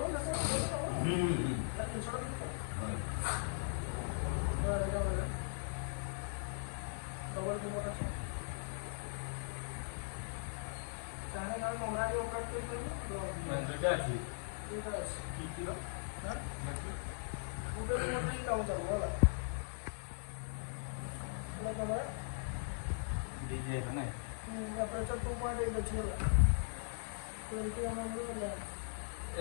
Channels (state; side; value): silent; right; digital silence